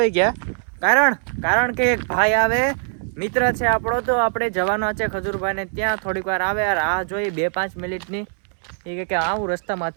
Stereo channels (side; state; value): left; silent; digital silence